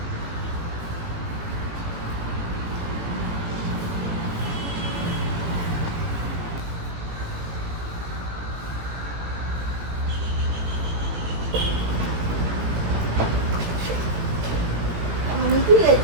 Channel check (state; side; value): late; left; 17 ms